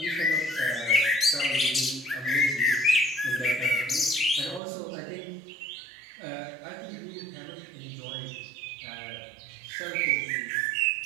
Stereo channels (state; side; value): drops out; left; at 4.6 s